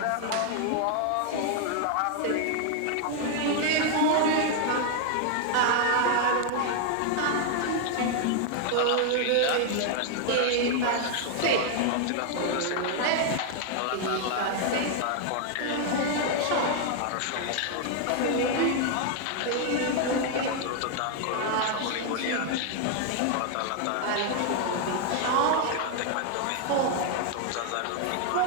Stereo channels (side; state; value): both; different; correlation 0.00